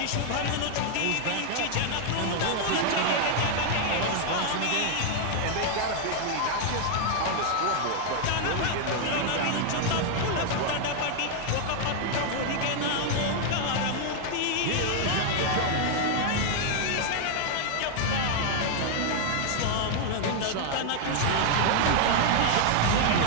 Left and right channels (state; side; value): different; both; correlation 0.00